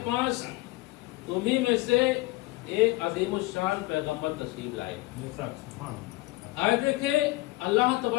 پاس تمہیں میں سے ایک عظیم الشان پیغمبر تشریف لائے۔ آئے دیکھیں اللہ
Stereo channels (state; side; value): quieter; right; 20.2 dB